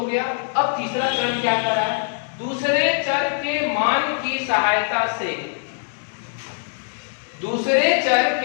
गया। अब तीसरा चरण क्या कर रहा है? दूसरे चर के मान की सहायता से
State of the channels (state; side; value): silent; right; digital silence